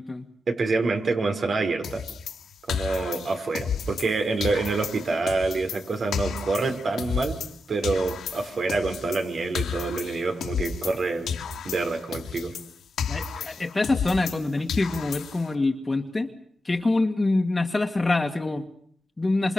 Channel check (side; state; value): both; normal; correlation 0.87